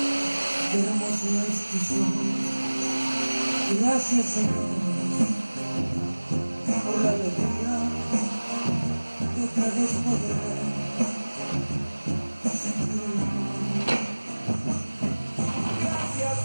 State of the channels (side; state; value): both; inverted; correlation -1.00